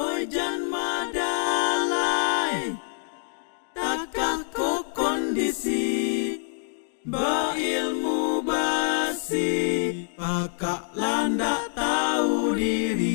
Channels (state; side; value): silent; right; digital silence